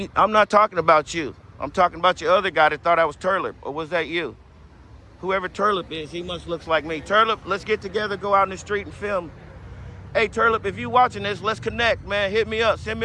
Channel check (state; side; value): identical; both; correlation 1.00